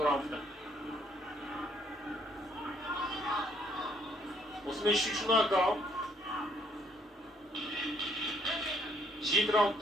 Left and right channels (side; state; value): both; normal; correlation 0.67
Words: раундта. Осымен 3-ші нокдаун. 7